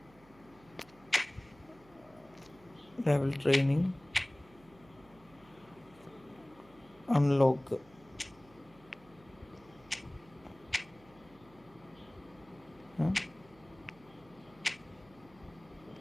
Level training unlock.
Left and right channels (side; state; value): right; noise; hum, 25 dB below the sound